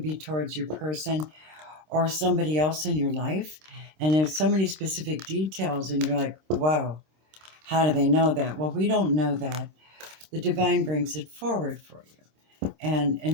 be towards your person or somebody else in your life. And there's so many specific details and you're like, wow, how do they know that? Well, we don't know that. The divine brings it forward for you.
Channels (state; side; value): late; left; 26 ms